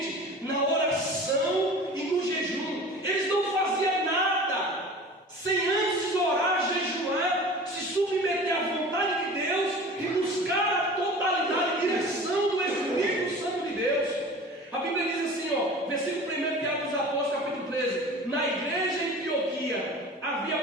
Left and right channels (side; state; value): both; normal; correlation 0.39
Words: na oração e no jejum. Eles não faziam nada sem antes orar, jejuar, se submeter à vontade de Deus e buscar a totalidade e direção do Espírito Santo de Deus. A Bíblia diz assim, versículo 1 de Atos dos Apóstolos, capítulo 13: na igreja em Antioquia